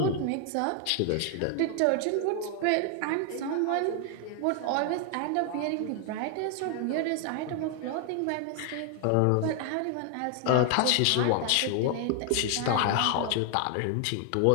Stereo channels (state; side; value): different; both; correlation 0.00